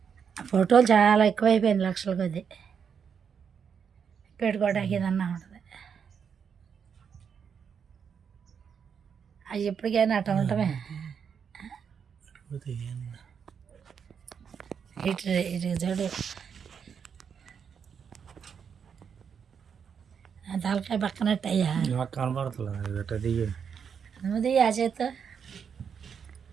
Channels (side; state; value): left; quieter; 7.0 dB